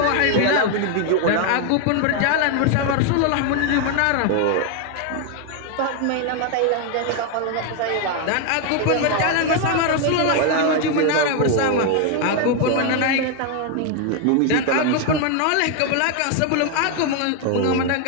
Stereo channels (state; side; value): different; both; correlation 0.01